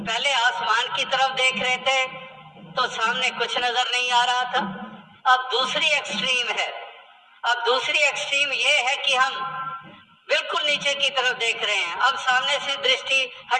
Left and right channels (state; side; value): identical; both; correlation 1.00